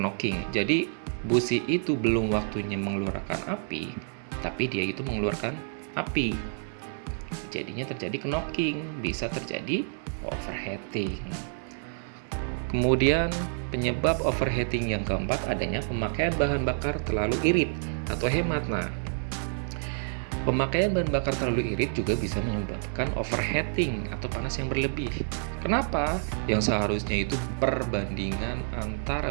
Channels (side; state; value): left; silent; digital silence